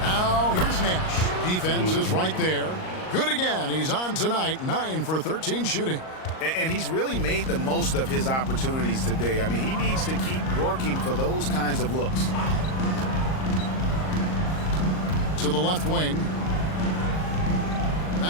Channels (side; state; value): right; late; 38 ms